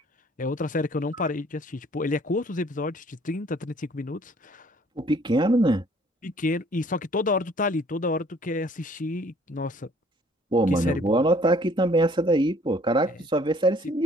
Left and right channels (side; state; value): both; normal; correlation 0.58